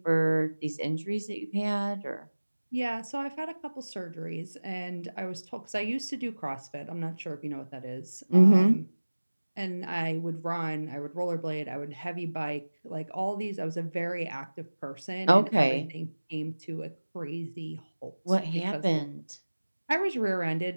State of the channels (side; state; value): both; inverted; correlation -1.00